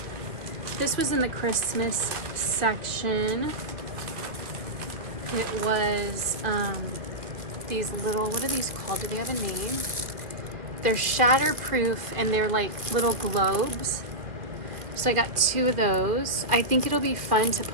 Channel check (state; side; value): late; left; 2.4 ms